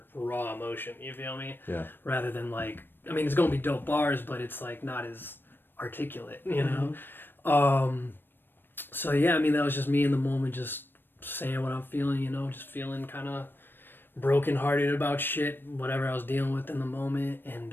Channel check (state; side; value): late; right; 0.096 ms